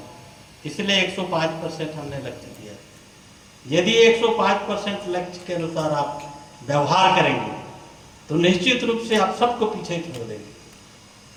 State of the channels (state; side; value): identical; both; correlation 1.00